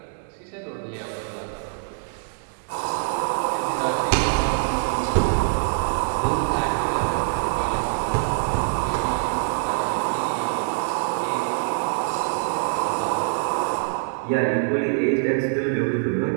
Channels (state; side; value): silent; left; digital silence